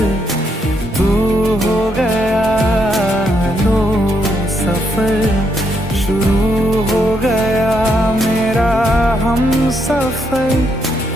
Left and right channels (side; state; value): both; normal; correlation 0.77